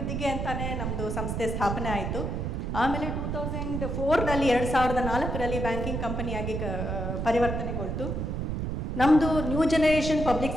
ಅಂತಲೇ ನಮ್ಮದು ಸಂಸ್ಥೆ ಸ್ಥಾಪನೆ ಆಯಿತು. ಆಮೇಲೆ 2004ರಲ್ಲಿ 2004ರಲ್ಲಿ ಬ್ಯಾಂಕಿಂಗ್ ಕಂಪನಿಯಾಗಿ ಪರಿವರ್ತನೆಗೊಳ್ತು. ನಮ್ಮದು new generation public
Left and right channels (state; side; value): noise; right; rumble, 2 dB below the sound